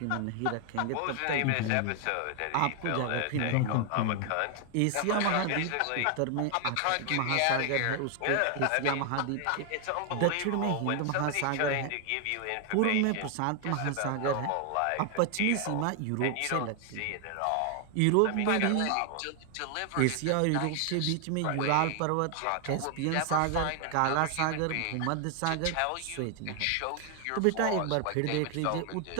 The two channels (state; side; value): different; both; correlation 0.00